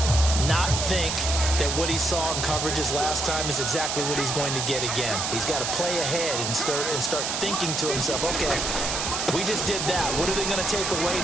Not think that what he saw in coverages last time is exactly what he's going to get again. He's got to play ahead and start thinking to himself, okay, we just did that. What are they going to take away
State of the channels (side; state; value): right; noise; hiss, 1 dB below the sound